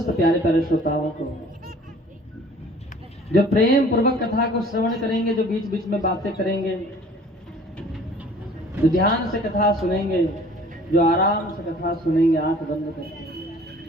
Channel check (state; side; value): normal; both; correlation 0.51